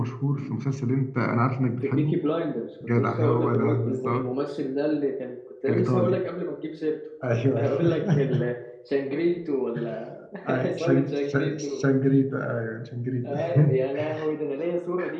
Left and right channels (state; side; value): identical; both; correlation 1.00